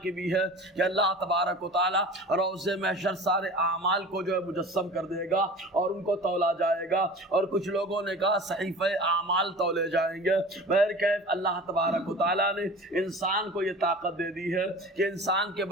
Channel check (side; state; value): both; normal; correlation 0.39